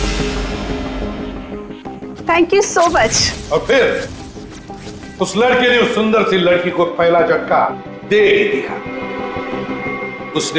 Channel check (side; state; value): both; identical; correlation 1.00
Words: Thank you so much. और फिर उस लड़के ने उस सुंदर सी लड़की को पहला झटका दे ही दिया।